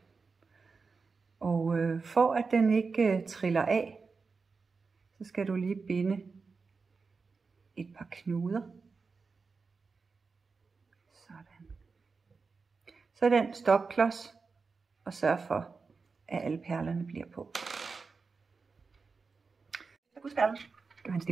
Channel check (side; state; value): left; quieter; 4.6 dB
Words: Og for at den ikke triller af, så skal du lige binde et par knuder. Sådan. Så den stopklods, og sørg for, at alle perlerne bliver på. Så gudsperlen skal have en